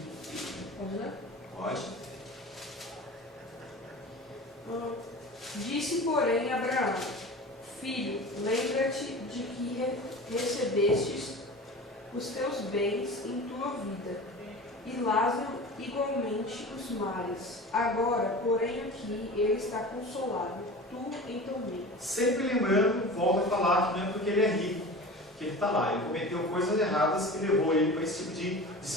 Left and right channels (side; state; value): both; normal; correlation 0.35